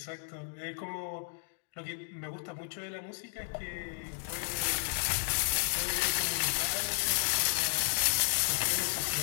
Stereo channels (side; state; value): right; silent; digital silence